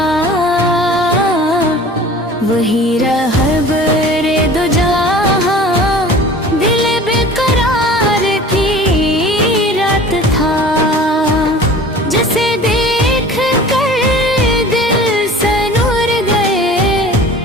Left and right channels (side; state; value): both; normal; correlation 0.43